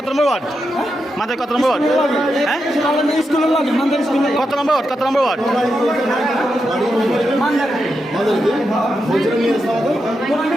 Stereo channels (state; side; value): normal; both; correlation 0.86